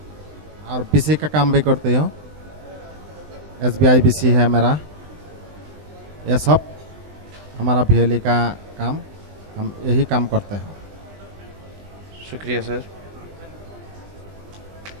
और BC का काम भी करती हूँ। SBI BC है मेरा। ये सब हमारा BLA का काम हम यही काम करते हैं। शुक्रिया सर।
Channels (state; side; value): late; left; 20 ms